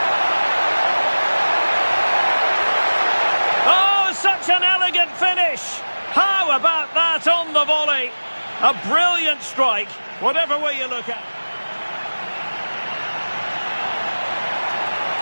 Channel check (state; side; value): inverted; both; correlation -1.00